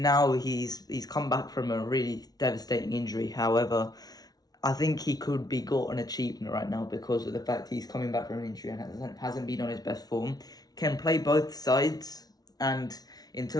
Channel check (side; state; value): right; late; 0.19 ms